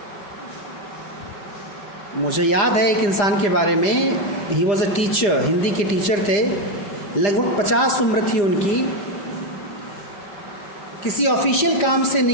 मुझे याद है एक इंसान के बारे में, he was a teacher, Hindi के टीचर थे, लगभग 50 उम्र थी उनकी। किसी ऑफिशियल काम से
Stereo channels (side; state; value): right; late; 5.0 ms